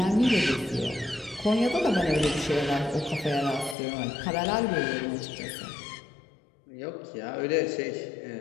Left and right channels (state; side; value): drops out; right; at 3.8 s